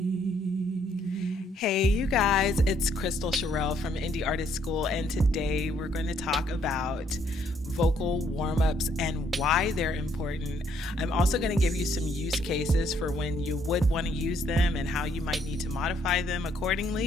Hey you guys, it's Kristal Cherelle from Indie Artist School, and today we're going to talk about vocal warm-ups and why they're important. I'm also going to give you some use cases for when you would want to use them and how you might need to modify them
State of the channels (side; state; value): both; normal; correlation 0.69